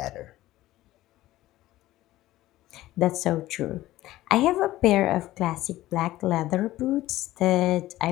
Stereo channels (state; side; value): quieter; right; 15.9 dB